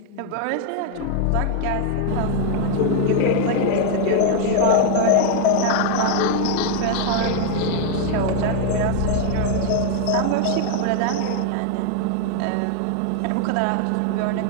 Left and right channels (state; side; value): different; both; correlation 0.00